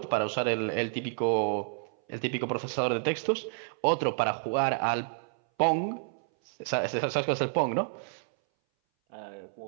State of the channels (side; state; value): left; silent; 58 dB below the other